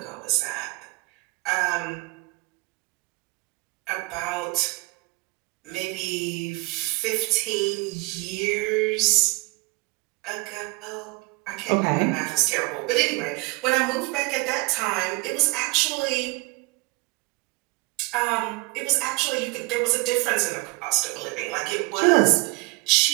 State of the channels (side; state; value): left; quieter; 25.1 dB